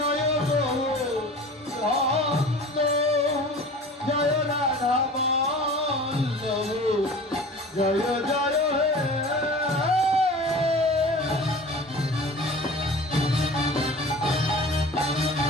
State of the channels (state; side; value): normal; both; correlation 0.40